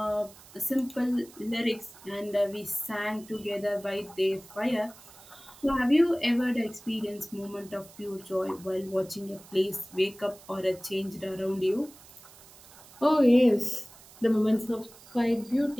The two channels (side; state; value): right; noise; hiss, 22 dB below the sound